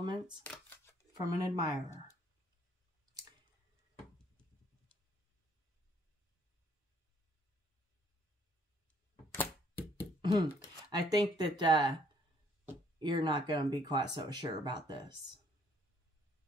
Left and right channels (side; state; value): both; normal; correlation 0.64